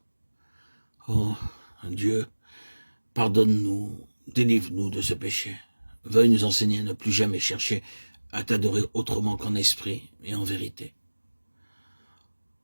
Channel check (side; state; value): both; inverted; correlation -1.00